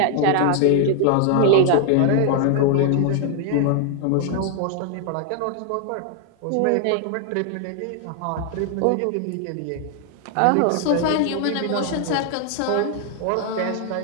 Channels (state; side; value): different; both; correlation 0.00